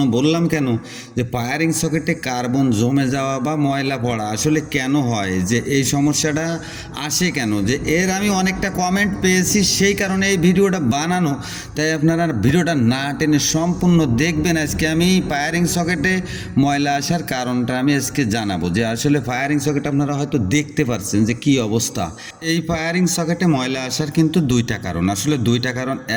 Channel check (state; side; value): identical; both; correlation 1.00